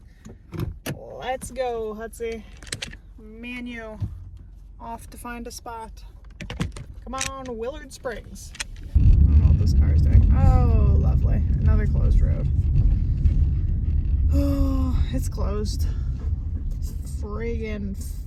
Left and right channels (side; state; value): both; identical; correlation 1.00